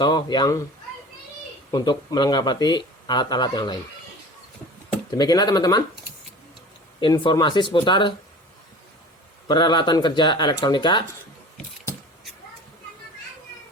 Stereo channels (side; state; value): both; normal; correlation 0.39